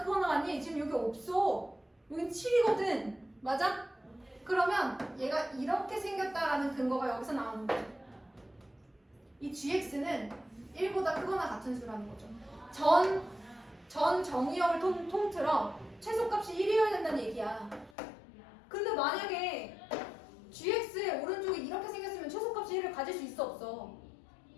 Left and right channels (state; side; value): drops out; right; at 17.9 s